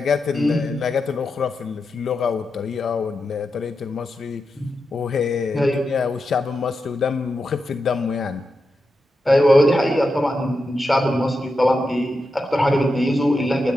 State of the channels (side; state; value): both; normal; correlation 0.88